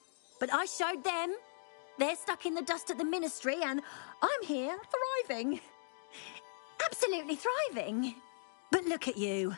But I showed them. They're stuck in the dust at the ministry and I'm here thriving. Absolutely thriving. But look at you.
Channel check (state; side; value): silent; right; digital silence